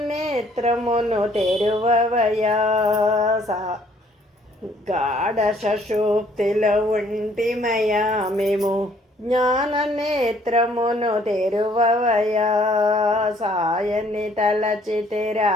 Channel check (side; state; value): both; normal; correlation 0.62